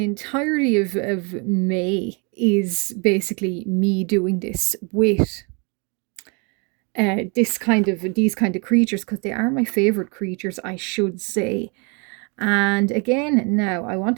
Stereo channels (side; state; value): left; quieter; 33.2 dB